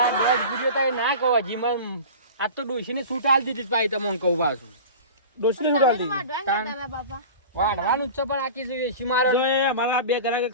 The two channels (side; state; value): both; inverted; correlation -0.35